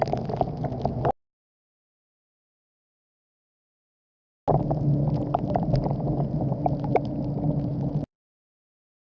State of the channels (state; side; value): identical; both; correlation 1.00